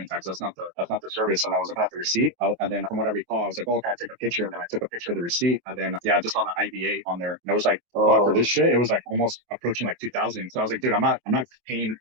tax. That's not the service. And I was looking at the receipt. And then from what I recall, I was like, oh, can I take a picture? And then I took a picture of the receipt. And then I just saw the IVA on there. And it was like, for this shit, it was like almost approaching like 2,000. So I was like, dude, I'm not paying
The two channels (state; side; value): late; left; 24 ms